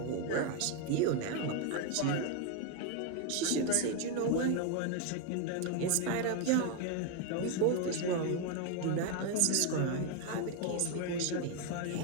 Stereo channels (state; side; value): different; both; correlation 0.01